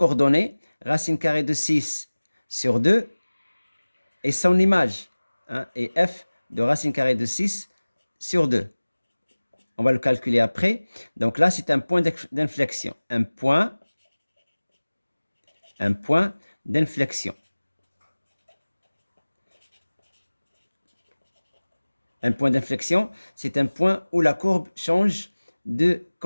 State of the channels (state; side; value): inverted; both; correlation -1.00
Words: racine carrée de 6 sur 2 et son image. Hein, et f de racine carrée de 6 sur 2. On va le calculer après. Donc là, c'est un point d'inflexion. Un point d'inflexion. Un point d'inflexion, c'est un point où la courbe change de